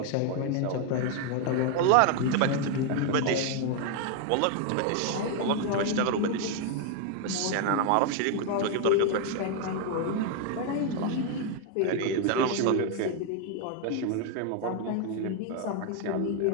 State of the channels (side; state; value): both; different; correlation 0.01